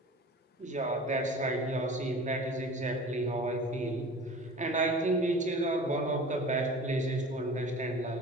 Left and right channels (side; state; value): both; normal; correlation 0.40